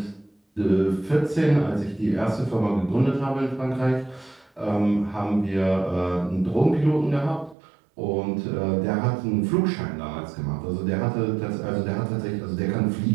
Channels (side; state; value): left; drops out; at 7.6 s